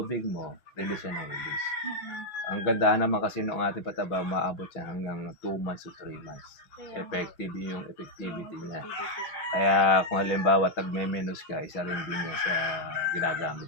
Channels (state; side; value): late; right; 6.1 ms